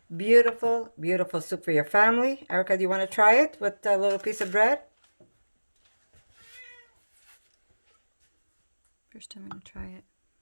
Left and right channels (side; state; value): both; inverted; correlation -1.00